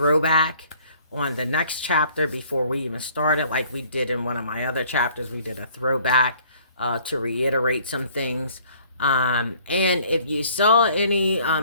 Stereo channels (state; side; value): inverted; both; correlation -0.57